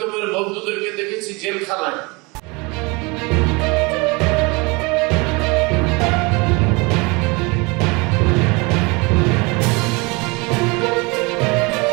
বন্ধুদেরকে দেখেছি জেলখানায়,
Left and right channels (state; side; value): quieter; left; 27.1 dB